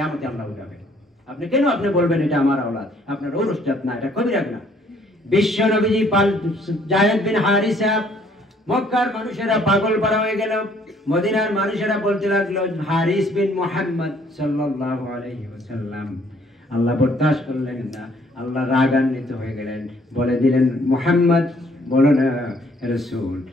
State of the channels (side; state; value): both; normal; correlation 0.63